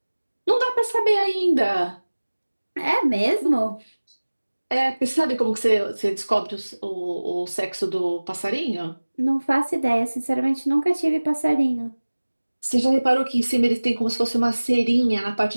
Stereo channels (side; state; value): both; inverted; correlation -1.00